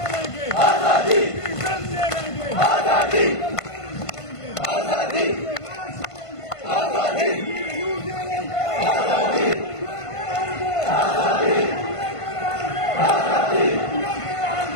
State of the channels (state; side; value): late; right; 1.5 ms